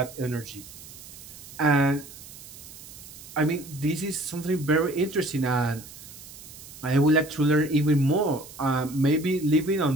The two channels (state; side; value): noise; right; hiss, 16 dB below the sound